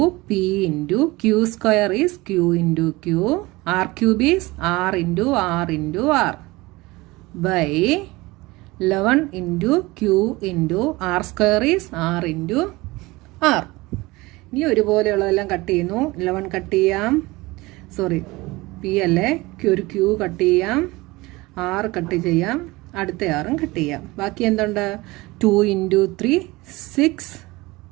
p × q² is q × q, r³ is r × r × r by 11 × q × r² is r × r. ഇനി ഒരുപോലെയുള്ളതെല്ലാം കട്ട് ചെയ്യുന്നു. 11 കട്ട് ചെയ്യാം, സോറി p അല്ലേ, ഒരു q കട്ട് ചെയ്യാം, r കട്ട് ചെയ്യാം, അടുത്ത rഉം കട്ട് ചെയ്യാം. ബാക്കി എന്തുണ്ട്? 2 × 3 6.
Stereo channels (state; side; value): quieter; left; 21.6 dB